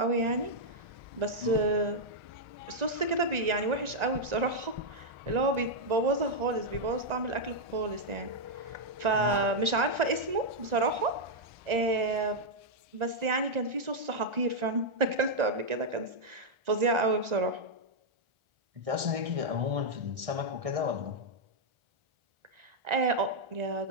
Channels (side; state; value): left; late; 1.4 ms